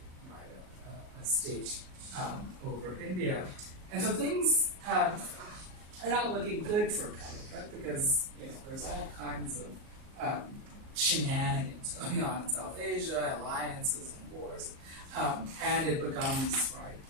right, a state over India. And so things are not looking good for Calicut because there's all kinds of shenanigans going on in South Asia, alliances and wars, and it becomes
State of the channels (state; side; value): late; left; 38 ms